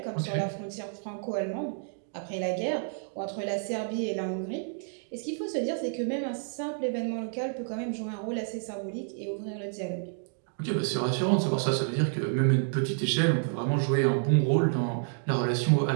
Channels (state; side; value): silent; left; digital silence